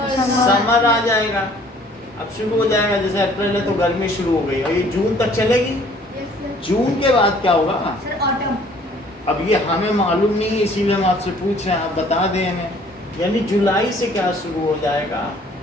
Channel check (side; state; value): both; normal; correlation 0.56